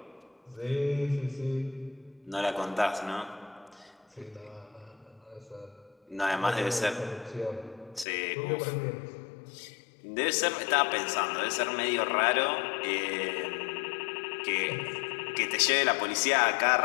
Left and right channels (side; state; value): right; drops out; at 8.1 s